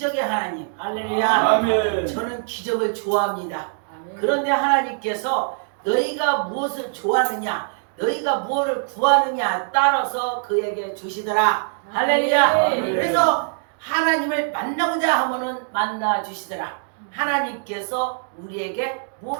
하나님. 할렐루야. 아멘. 저는 기적을 좋아합니다. 그런데 하나님께서 너희가 무엇을 좋아하느냐, 너희가 무엇을 구하느냐 따라서 그에게 주시더라. 할렐루야. 아멘. 그래서 하나님을 만나고자 하면은 만나 주시더라. 하나님께서 우리에게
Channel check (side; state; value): left; silent; digital silence